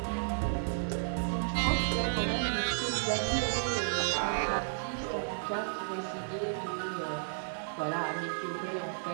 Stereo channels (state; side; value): silent; left; 56 dB below the other